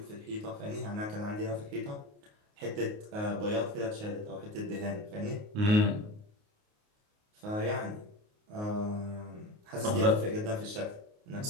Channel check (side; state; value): left; late; 28 ms